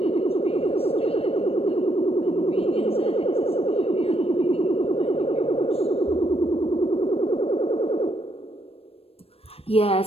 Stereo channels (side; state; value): right; late; 0.28 ms